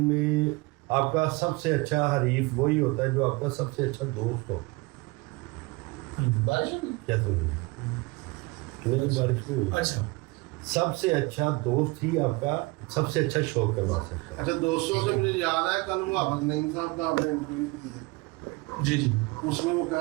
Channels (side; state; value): left; quieter; 24.7 dB